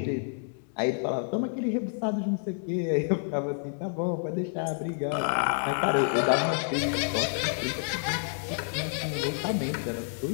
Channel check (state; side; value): silent; right; 59 dB below the other